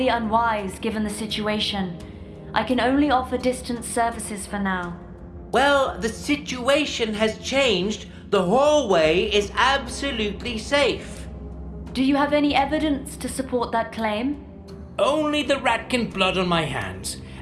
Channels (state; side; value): identical; both; correlation 1.00